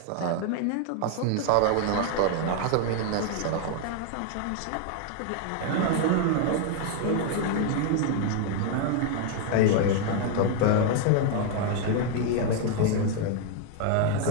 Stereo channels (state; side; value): different; both; correlation 0.00